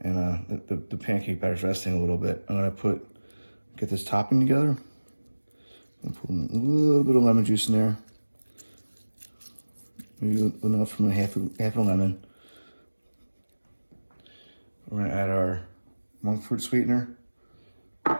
the pancake batter's resting a little bit, I'm gonna get this topping together. And put a little bit of lemon juice in there. Maybe enough from half a lemon. We're gonna add our monk fruit sweetener.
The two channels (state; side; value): inverted; both; correlation -1.00